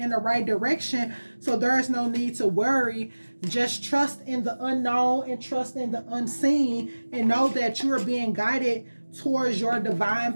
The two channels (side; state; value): both; inverted; correlation -1.00